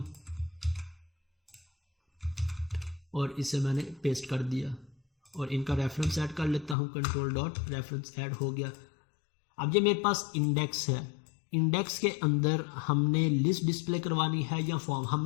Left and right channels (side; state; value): right; drops out; at 6.8 s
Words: और इसे मैंने पेस्ट कर दिया और इनका रेफरेंस ऐड कर लेता हूँ, कंट्रोल डॉट रेफरेंस ऐड हो गया। अब ये मेरे पास इंडेक्स है, इंडेक्स के अंदर हमने लिस्ट डिस्प्ले करवानी है या फॉर्म,